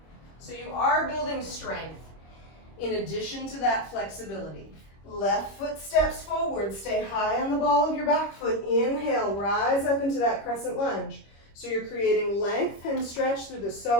So you are building strength in addition to that flexibility. Left foot steps forward. Stay high on the ball of your back foot. Inhale, rise up into that crescent lunge. So you're creating length and stretch through the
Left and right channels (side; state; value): right; late; 25 ms